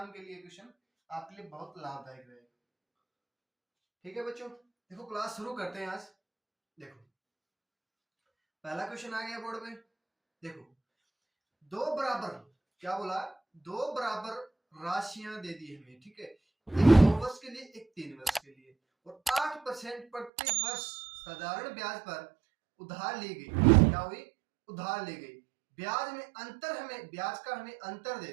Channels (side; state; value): left; drops out; at 20.3 s